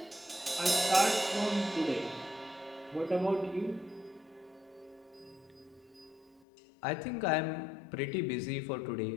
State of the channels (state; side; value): drops out; right; at 6.4 s